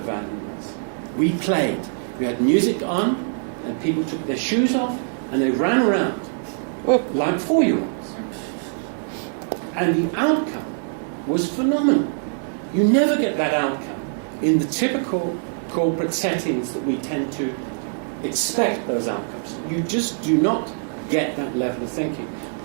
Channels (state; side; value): silent; left; digital silence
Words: was. We played. We had music on, and people took their shoes off, and they ran around like 4-year-olds. And the outcome was phenomenal. You never get that outcome in the typical corporate settings that we tend to expect those outcomes. You just do not get that level of thinking,